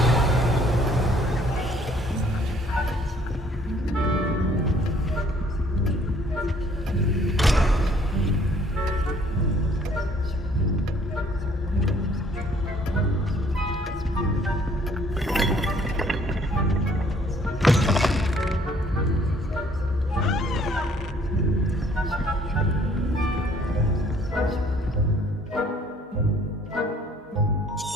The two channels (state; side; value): normal; both; correlation 0.60